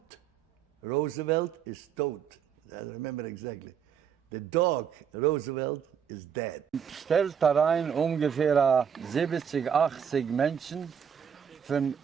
Roosevelt is tot. I remember exactly. The dog Roosevelt is dead. Stellt da rein ungefähr 70, 80 Menschen, von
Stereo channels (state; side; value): quieter; left; 7.8 dB